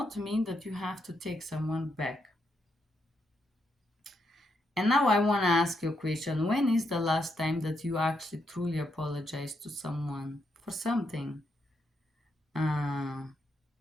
mean that you have to take someone back. And now I want to ask you a question. When is the last time that you actually truly apologized to someone for something? Uh,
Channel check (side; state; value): both; normal; correlation 0.79